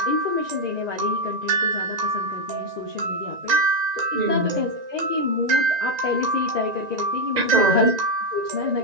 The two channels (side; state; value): left; late; 1.9 ms